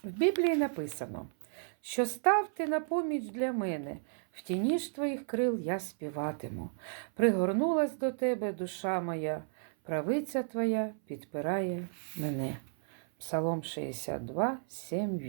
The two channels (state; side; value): silent; left; 56 dB below the other